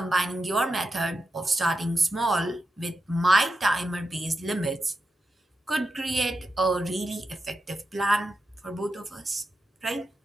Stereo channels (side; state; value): both; normal; correlation 0.88